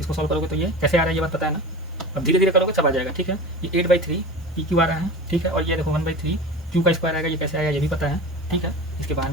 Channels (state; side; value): normal; both; correlation 0.32